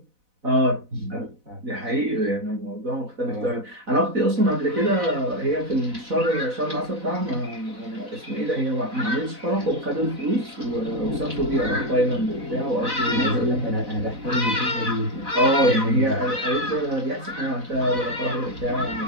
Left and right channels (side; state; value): left; late; 4.0 ms